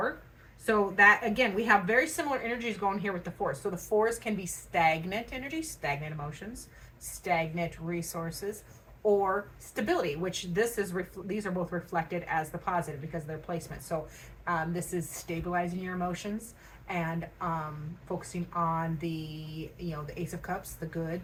So that, again, we have very similar energies going here with the 4s. So the 4s can be stagnant energies, stagnant emotions, stagnant resources, or stability, which these are both reflected as the positive because of their placement. So this is stabilizing your emotions and focusing on the Ace of Cups, the good,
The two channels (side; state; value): both; identical; correlation 1.00